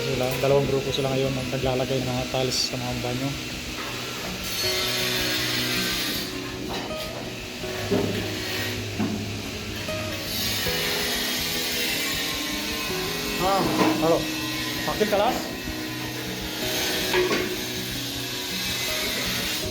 sila, dalawang grupo sila ngayon naglalagay ng mga tiles sa mga banyo. Halo, pakil kelas?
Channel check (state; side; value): identical; both; correlation 1.00